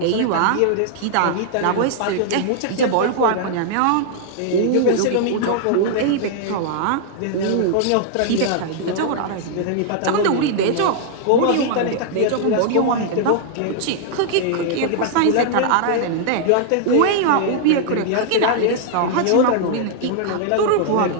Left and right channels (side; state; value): both; different; correlation -0.01